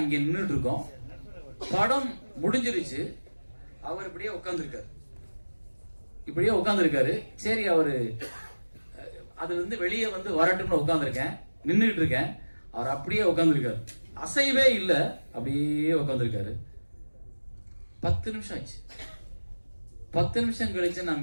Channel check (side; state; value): both; inverted; correlation -1.00